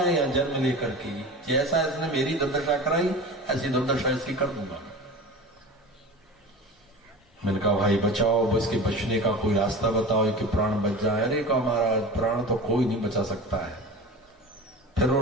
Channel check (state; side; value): normal; both; correlation 0.33